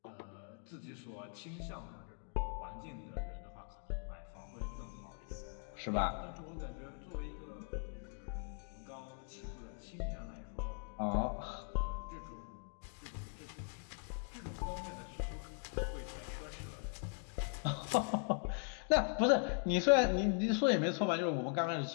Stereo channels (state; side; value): silent; right; 51 dB below the other